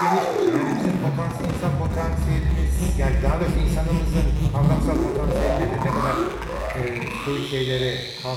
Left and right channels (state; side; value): identical; both; correlation 1.00